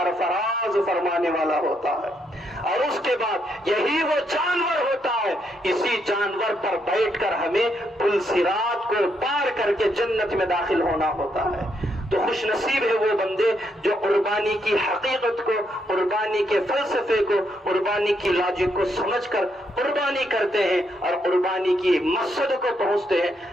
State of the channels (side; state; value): both; normal; correlation 0.77